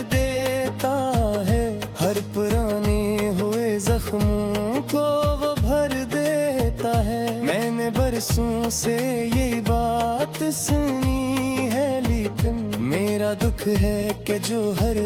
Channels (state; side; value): identical; both; correlation 1.00